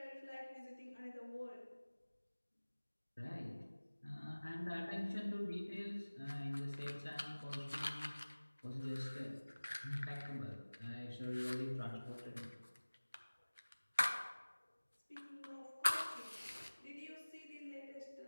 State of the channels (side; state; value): both; inverted; correlation -1.00